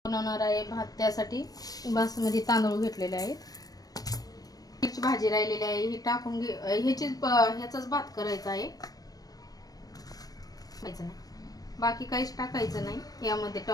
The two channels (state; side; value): late; right; 0.18 ms